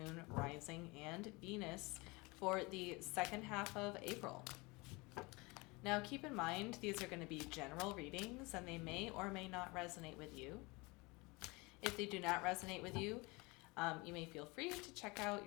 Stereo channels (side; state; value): right; quieter; 25.4 dB